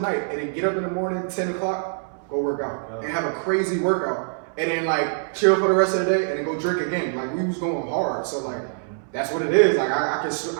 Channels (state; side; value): silent; left; 62 dB below the other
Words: and then get up in the morning, 10 o'clock, go work out, and have a crazy workout, and then like chill for the rest of the day, and then go drink again. Like we was going hard, so like that's what it is. Like I